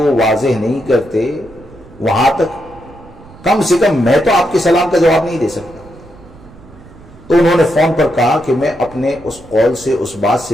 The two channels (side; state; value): right; noise; rumble, 22 dB below the sound